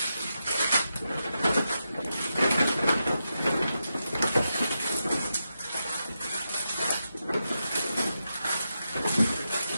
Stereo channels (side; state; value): both; inverted; correlation -0.87